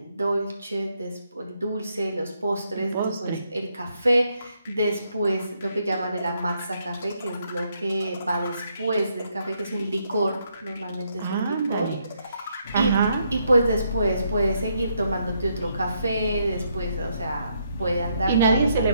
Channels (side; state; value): both; inverted; correlation -0.75